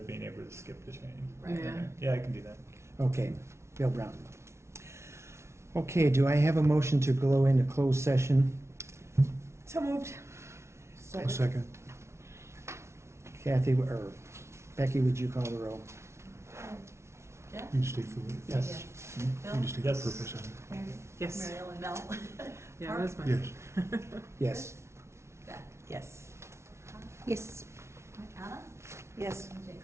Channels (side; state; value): left; late; 0.13 ms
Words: being able to skip the training. Right. Yeah. Yeah, I can do that. Okay, Bill Brown. Okay, do I have a motion to go into closed session? So moved. A second. Kathy, or Becky, would you call the roll? Jeff? You state for it. Yes. Bill? You just state the Yes. purpose of it. Mary? Yes. Mary Ellen Bell? Yeah, that's my. Yes. Yes. Beth? Yes. Yes. Anna? Yes. And Jacob?